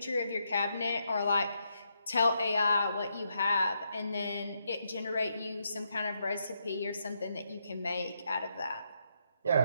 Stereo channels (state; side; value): inverted; both; correlation -0.79